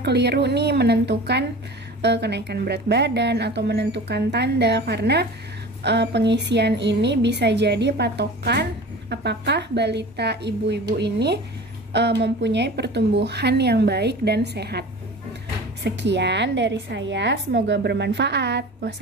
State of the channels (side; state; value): both; normal; correlation 0.37